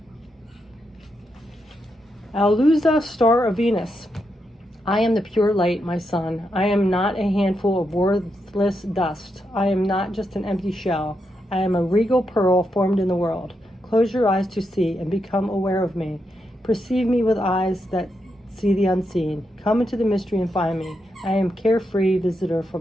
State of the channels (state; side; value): normal; both; correlation 0.83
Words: Alusa, star of Venus. I am the pure light, my son. I am not a handful of worthless dust. I am not just an empty shell. I am a regal pearl formed in the world. Close your eyes to see and become aware of me. Perceive me with eyes that see the unseen. Come into the mystery and find me. I am carefree visitor